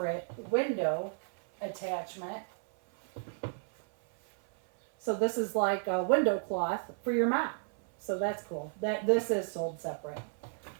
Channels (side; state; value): left; silent; 56 dB below the other